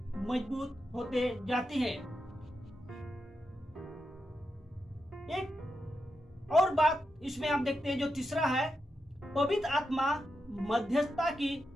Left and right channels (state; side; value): normal; both; correlation 0.87